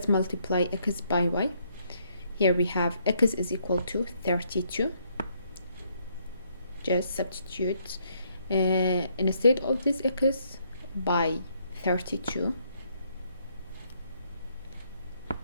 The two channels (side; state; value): both; inverted; correlation -0.71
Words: multiply x by y. Here we have x is equal to 32. Just substitute instead of this x by 32